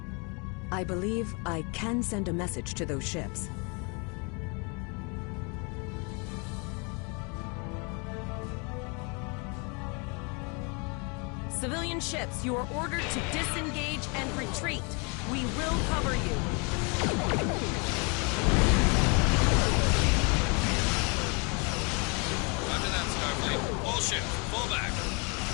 I believe I can send a message to those ships. Civilian ships, you are ordered to disengage and retreat. We will cover you. Roger that, Starfleet. All ships, fall back.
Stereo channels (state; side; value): quieter; right; 32.7 dB